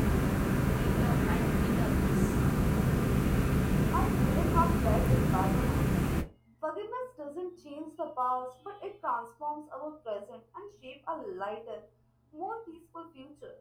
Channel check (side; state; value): both; identical; correlation 1.00